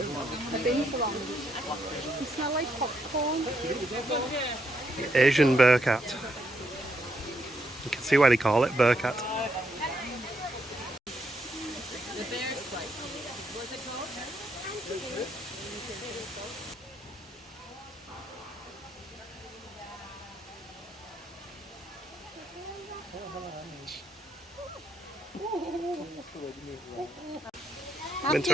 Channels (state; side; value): normal; both; correlation 0.77